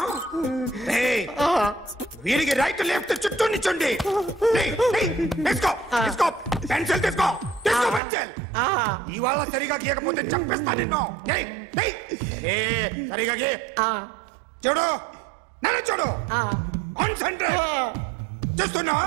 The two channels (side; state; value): left; drops out; at 8.0 s